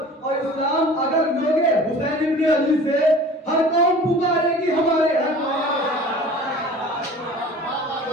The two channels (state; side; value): normal; both; correlation 0.43